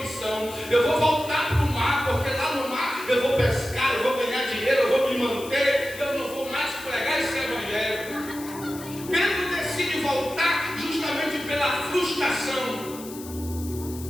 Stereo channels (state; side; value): noise; left; hiss, 15 dB below the sound